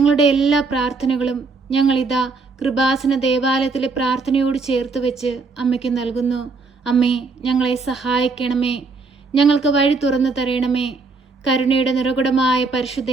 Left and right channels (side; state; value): left; quieter; 4.2 dB